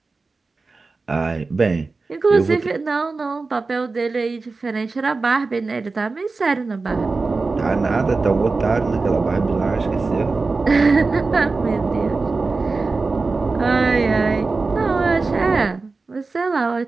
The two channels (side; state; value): left; quieter; 3.9 dB